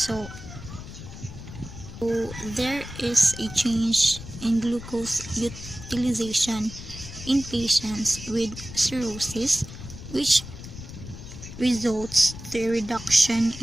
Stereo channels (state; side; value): noise; left; rumble, 12 dB below the sound